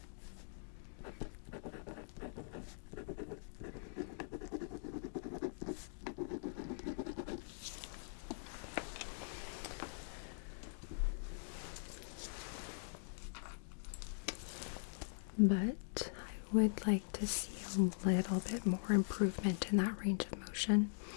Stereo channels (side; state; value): right; silent; digital silence